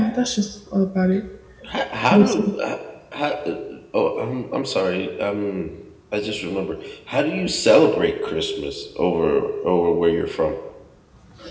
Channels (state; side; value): identical; both; correlation 1.00